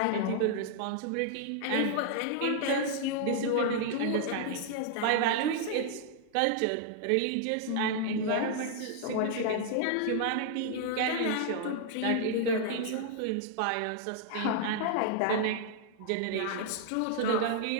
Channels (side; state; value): both; different; correlation -0.01